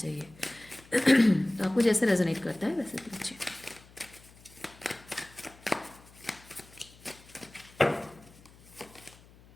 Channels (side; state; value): left; noise; hum, 24 dB below the sound